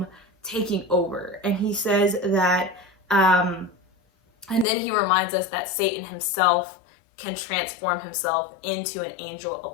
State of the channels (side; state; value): right; drops out; at 4.7 s